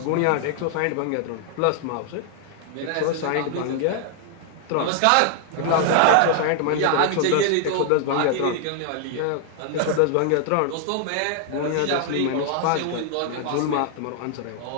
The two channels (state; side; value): different; both; correlation 0.00